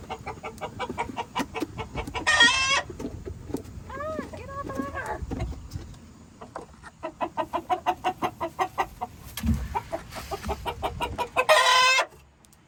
Get off of her.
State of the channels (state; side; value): identical; both; correlation 1.00